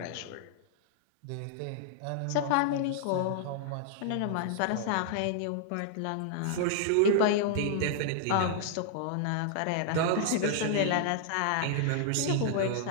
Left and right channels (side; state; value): both; different; correlation -0.01